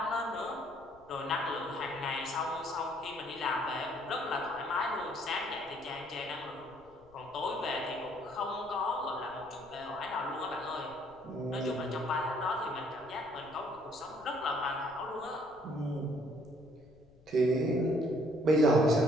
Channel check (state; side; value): noise; left; rumble, 27 dB below the sound